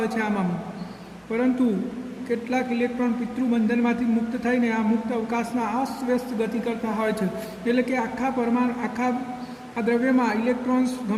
છે આમાં. પરંતુ કેટલાક ઇલેક્ટ્રોન પિતૃબંધનમાંથી મુક્ત થઈને આ મુક્ત અવકાશમાં અસ્તવ્યસ્ત ગતિ કરતા હોય છે. એટલે કે આખા આ દ્રવ્યમાં ઇલેક્ટ્રોન્સ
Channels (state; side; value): identical; both; correlation 1.00